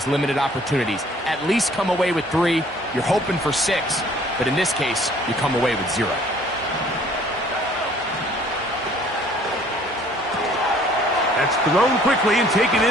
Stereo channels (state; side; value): normal; both; correlation 0.57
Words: limited opportunities. At least come away with 3. You're hoping for 6, but in this case, you come away with 0. That's thrown quickly and taken